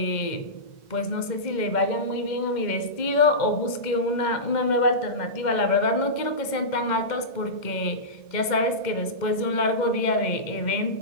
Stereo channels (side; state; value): right; late; 2.0 ms